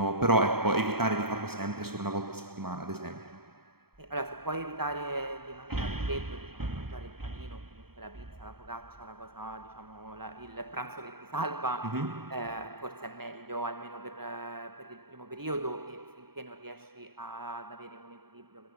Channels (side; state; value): left; late; 0.95 ms